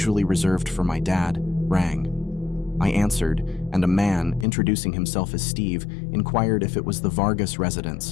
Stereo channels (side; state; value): right; drops out; at 4.5 s